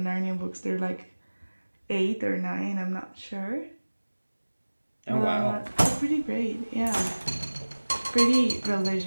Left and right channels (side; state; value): both; inverted; correlation -1.00